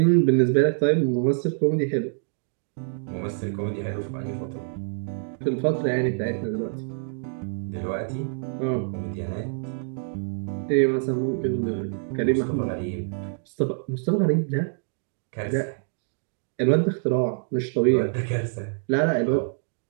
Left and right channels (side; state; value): left; silent; digital silence